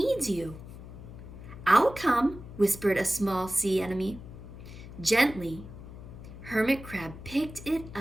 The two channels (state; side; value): noise; left; hum, 14 dB below the sound